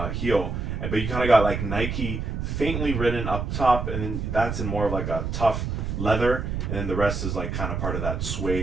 heel, but you kind of got like Nike faintly written up top, and then that's in more of like a tough leather, and then the rest is like kind of part of that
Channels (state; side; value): noise; right; rumble, 3 dB below the sound